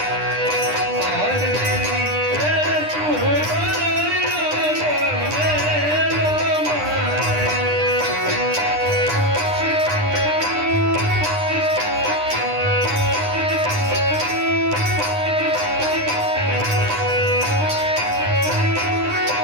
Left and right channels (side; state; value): left; late; 9.9 ms